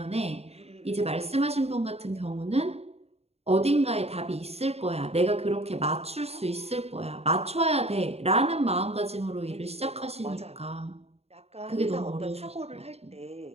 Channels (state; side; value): late; left; 0.30 ms